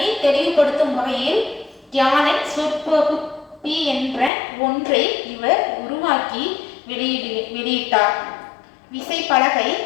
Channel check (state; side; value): drops out; right; at 4.3 s